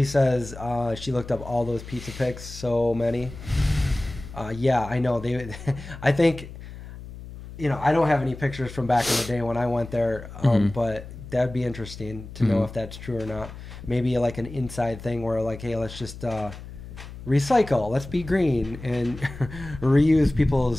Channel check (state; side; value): noise; left; hum, 13 dB below the sound